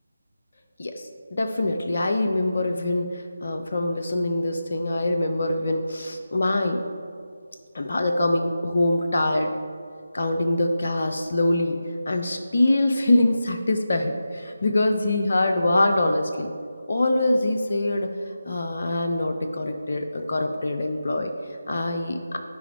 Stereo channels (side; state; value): both; inverted; correlation -0.91